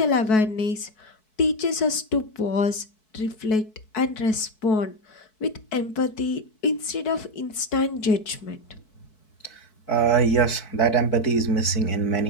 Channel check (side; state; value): right; late; 4.6 ms